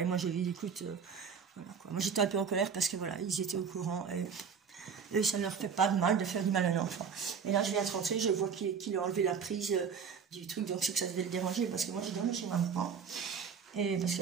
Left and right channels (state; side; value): quieter; left; 6.4 dB